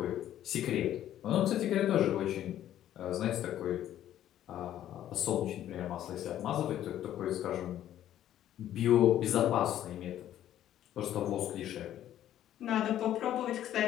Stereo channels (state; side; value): quieter; right; 11.8 dB